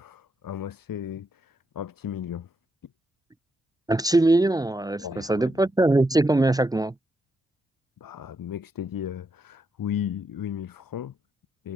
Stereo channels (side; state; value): both; normal; correlation 0.81